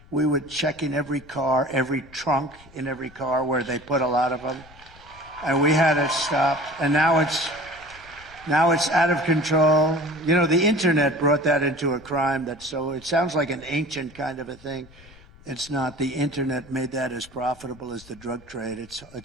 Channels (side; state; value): left; noise; rumble, 23 dB below the sound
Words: We would check in every car, every trunk in every car where they put a lot of them. And we had it stopped. And now it's out of control. The internet brought that into a crime. It sounds like an ancient kind of a thing. It's not. The internet made that as profitable as the drug trade.